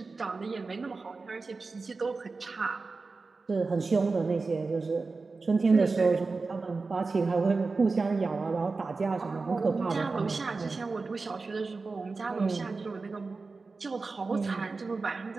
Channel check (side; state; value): left; quieter; 4.0 dB